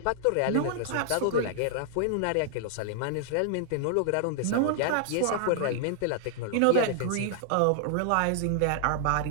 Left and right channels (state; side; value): different; both; correlation 0.00